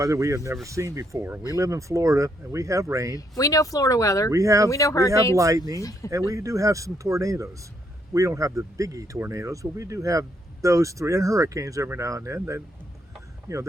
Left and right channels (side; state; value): both; normal; correlation 0.73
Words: we have never seen before. We live in Florida, and we have rain. We know Florida weather. We have and we know hurricanes. lightning, and we do have some tornadoes. We don't have the biggie tornadoes, but we do have those three, and hurricanes every now and then.